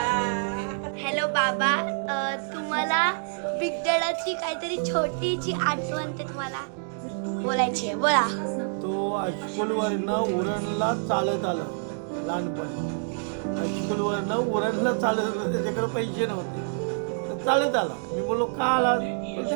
Hello बाबा, तुम्हाला बिग डॅडाची काहीतरी छोटीची आठवण ते तुम्हाला बोलायची आहे. बोला. तो हायस्कूलवरनं उरणला चालत आला लहानपणी. हायस्कूलवरनं उरणला चालत आला. त्याच्याकडे पैसे नव्हते तर चालत आला. मी बोललो का आला तर ते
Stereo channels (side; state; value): left; silent; digital silence